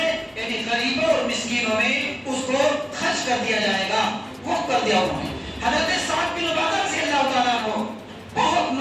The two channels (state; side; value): identical; both; correlation 1.00